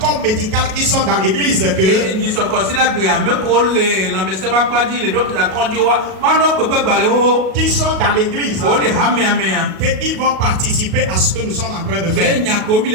médical, qui sont dans l'église, qui sont dans l'église, qu'ils vont participer à ce que nous sommes en train de faire.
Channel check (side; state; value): left; late; 37 ms